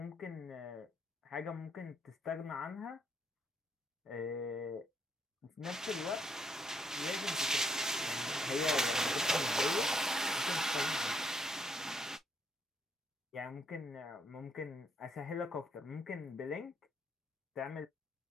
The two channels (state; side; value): normal; both; correlation 0.71